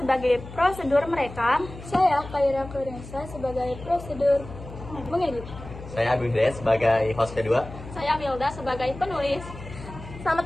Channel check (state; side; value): noise; left; hum, 14 dB below the sound